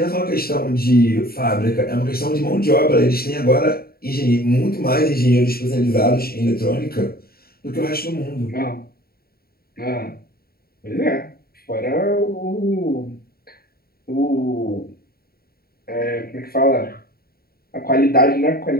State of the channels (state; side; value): late; right; 0.44 ms